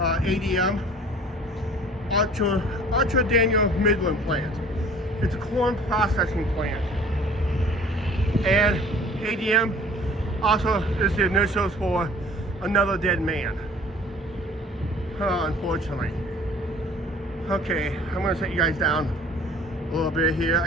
Archer Daniel Midland plant. It's a corn processing plant. And ADM also is the initials for another dead man. Unfortunately. Okay, I'm gonna set you guys down a little bit here. I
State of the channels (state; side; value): normal; both; correlation 0.50